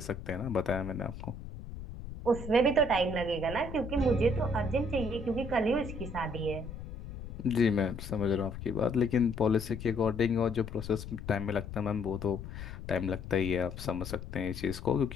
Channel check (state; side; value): noise; left; rumble, 10 dB below the sound